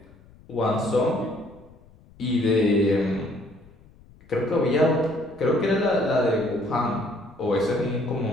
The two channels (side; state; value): left; noise; rumble, 25 dB below the sound